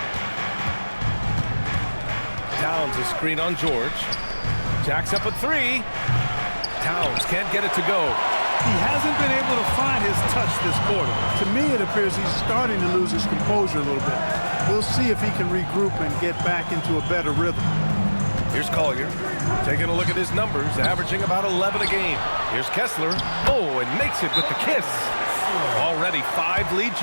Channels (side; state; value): both; inverted; correlation -1.00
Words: Towns a screen on George. Jacks up a three. Towns can't get it to go. He hasn't been able to find his touch this quarter. To me, it appears he's starting to lose his composure a little bit. We'll see if he can regroup and get back into a better rhythm. Here's Collier, taking a look at his numbers, averaging about 11 a game. Here's Kessler. Oh, and makes it with the kiss. Already 5 lead